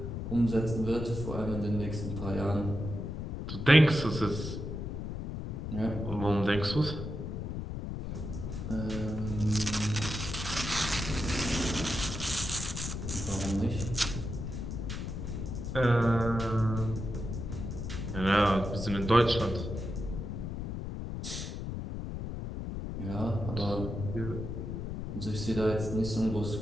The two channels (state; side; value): noise; left; rumble, 5 dB below the sound